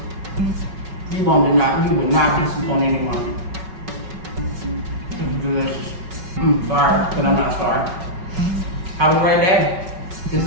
You will not disappoint anyone. It's delicious. Sorry, but I'm not sorry. Have a great day. This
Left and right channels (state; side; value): late; left; 5.3 ms